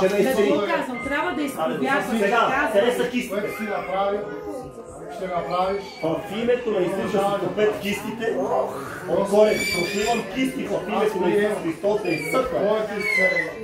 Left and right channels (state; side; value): identical; both; correlation 1.00